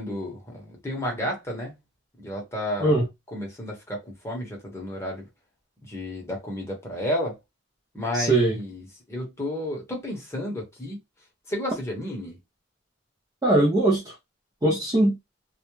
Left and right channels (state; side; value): normal; both; correlation 0.51